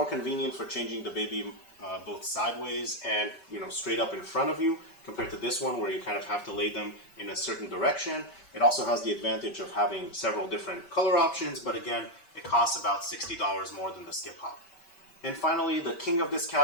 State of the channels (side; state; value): right; late; 5.2 ms